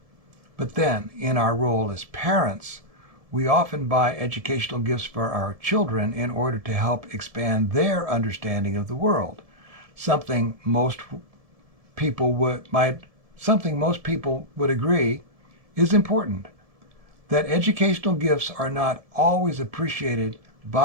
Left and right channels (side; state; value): left; late; 1.7 ms